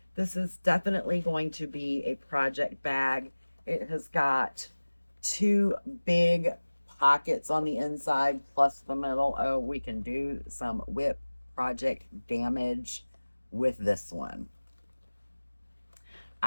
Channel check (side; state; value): both; inverted; correlation -1.00